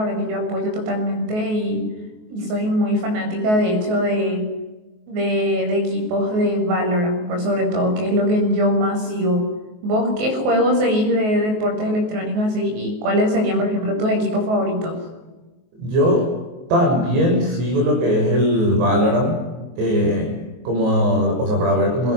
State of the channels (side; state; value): left; late; 23 ms